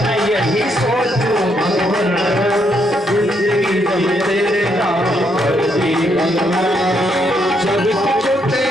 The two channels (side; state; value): both; normal; correlation 0.75